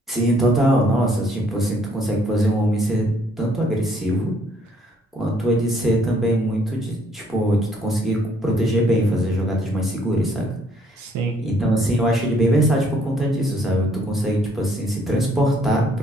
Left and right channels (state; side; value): normal; both; correlation 0.65